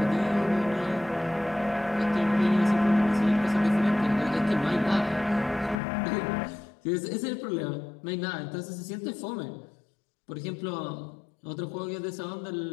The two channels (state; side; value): drops out; right; at 5.8 s